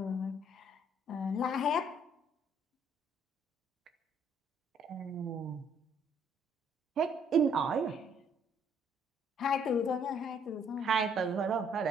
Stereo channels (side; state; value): both; normal; correlation 0.65